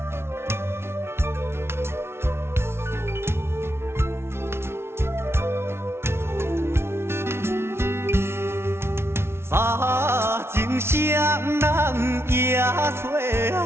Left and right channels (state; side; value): late; left; 0.12 ms